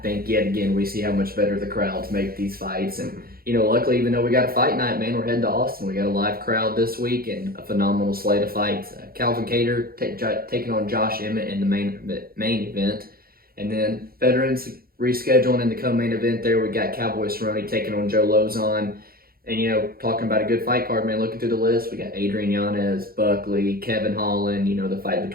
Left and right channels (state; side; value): late; left; 0.43 ms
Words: yet again we see how much better the crowds make these fights. And luckily, even though we got a fight night, man, we're heading to Austin. We got a live crowd this week and a phenomenal slate of fights. Calvin Kattar taking on Josh Emmett in the main event. And then veterans rescheduling in the co-main event there. We got Cowboy Cerrone taking on Joe Lauzon. And, talking about a good fight card, man, looking through the list, we got Adrian Yanez, Buckley, Kevin Holland, the fight